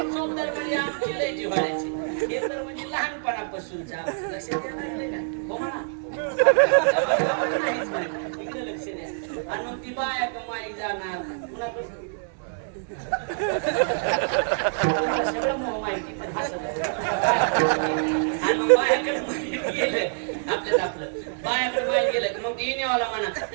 चौदार म्हणजे आमची लय जिव्हाळ्याची. हे तर म्हणजे लहानपणापासूनचा लक्षात द्या लागले का? हो म्हणा इकडे लक्ष द्या. आणि मग ती बाया कमाई जाणार कुणापासून सगळं माहिती पण हसत. आणि मग बायाकडे माहिती गेलं आपल्याला, आपलं बायाकडे माहिती गेलं की मग येणेवाला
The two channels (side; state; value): left; silent; 61 dB below the other